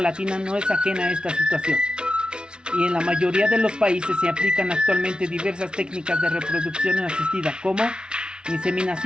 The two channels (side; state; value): left; late; 0.055 ms